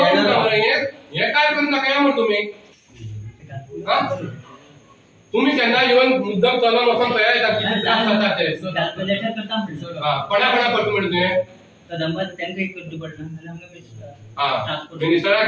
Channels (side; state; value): both; identical; correlation 1.00